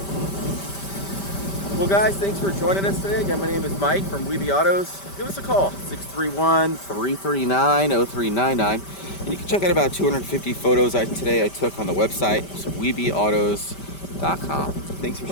Well, guys, thanks for joining us today. Again, my name is Mike from Weeby Autos. Give us a call, 631-339-0399. And you can check out about 250 photos today I took on the website, so weebyautos.com. Thanks for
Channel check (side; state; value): right; late; 5.1 ms